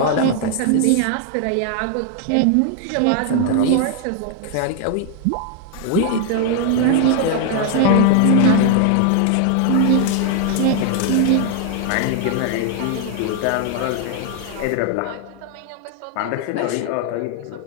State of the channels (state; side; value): different; both; correlation 0.00